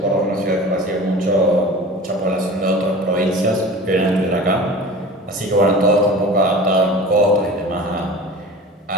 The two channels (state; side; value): normal; both; correlation 0.38